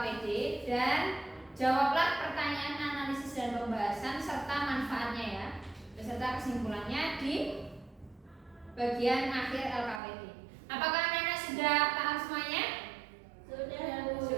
dan jawablah pertanyaan analisis dan pembahasan serta manfaatnya ya, beserta kesimpulannya di bagian akhir LKPD. Apakah anak-anak sudah paham semuanya? Sudah, Bu.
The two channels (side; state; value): left; drops out; at 10.0 s